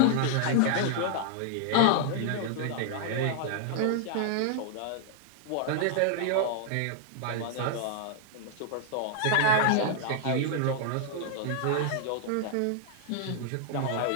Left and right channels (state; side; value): different; both; correlation 0.00